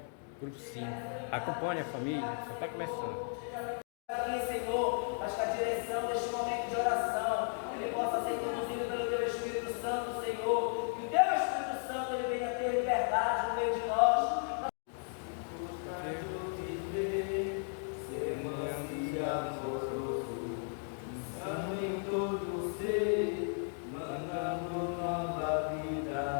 grupo 5. Acompanhe a família, só está começando. Aqui, Senhor, mas que a direção deste momento de oração ele possa ser conduzido pelo Teu Espírito Santo, Senhor. Que o Teu Espírito Santo ele venha ter liberdade no meio de nós. Em todo ser, mandando nova vida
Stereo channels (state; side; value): silent; right; 54 dB below the other